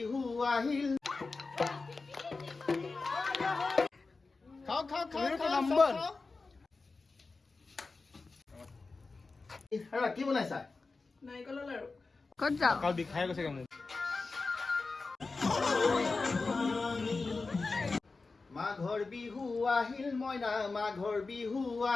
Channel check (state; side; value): quieter; right; 3.9 dB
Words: আহিল খাও খাও খাও নম্বৰ এৰা কি বনাইছা নাৰিকলৰ লাৰু ক'ত যাও কাল বিখাই গৈছে মোক মাঘৰ বিহু আহিল মইনা মাঘৰ বিহু